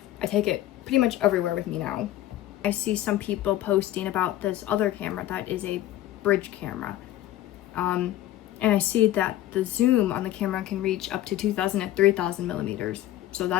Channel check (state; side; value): quieter; right; 13.9 dB